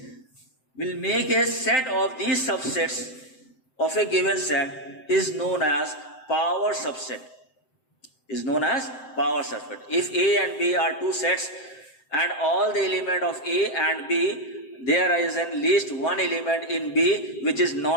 We'll make a set of these subsets of a given set is known as power subset. Is known as power subset. If A and B are two sets and all the element of A and B, there is at least one element in B which is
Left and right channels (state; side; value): late; right; 7.7 ms